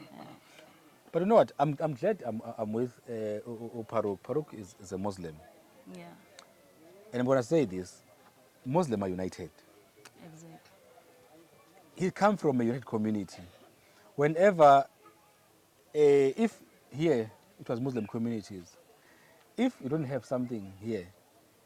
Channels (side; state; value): both; identical; correlation 1.00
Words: but you know what I'm glad I'm with Farouk is a Muslim and I'm going to say this Muslims are united. Exactly. He come from a united community. Whenever, if here it was Muslim communities, if you don't have something here,